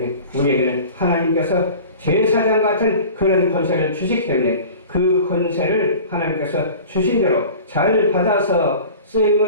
우리에게는 하나님께서 제사장 같은 그런 권세를 주시기 때문에 그 권세를 하나님께서 주신 대로 잘 받아서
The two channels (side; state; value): both; inverted; correlation -0.40